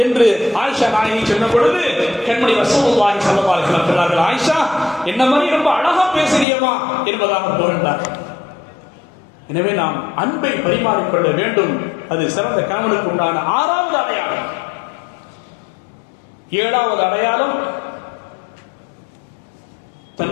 என்று ஆயிஷா நாயகி சொன்ன பொழுது கண்மணி ரசூலுல்லாஹி ஸல்லல்லாஹு அலைஹி வஸல்லம் சொன்னார்கள், ஆயிஷா என்ன மாதிரி ரொம்ப அழகா பேசுறியமா என்பதாக புகழ்ந்தார். எனவே நாம் அன்பை பரிமாறிக்கொள்ள வேண்டும். அது சிறந்த கணவனுக்கு உண்டான ஆறாவது அடையாளம். ஏழாவது அடையாளம்,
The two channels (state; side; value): drops out; right; at 6.5 s